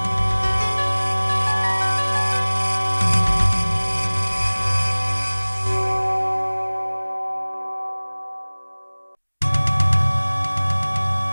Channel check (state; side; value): inverted; both; correlation -1.00